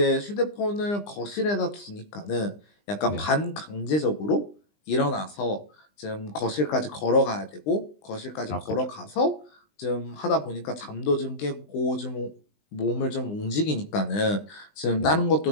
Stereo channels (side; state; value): right; late; 20 ms